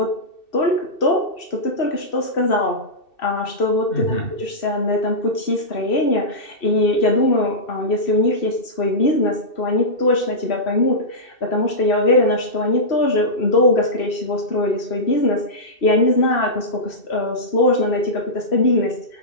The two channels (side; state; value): right; late; 2.6 ms